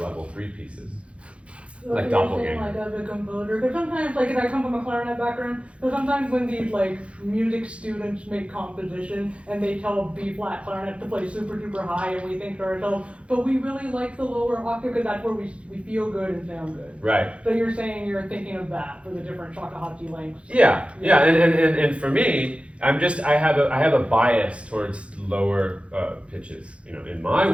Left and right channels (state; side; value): late; left; 0.061 ms